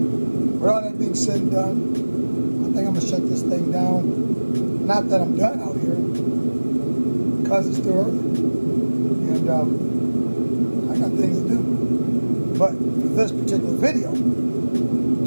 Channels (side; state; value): both; inverted; correlation -1.00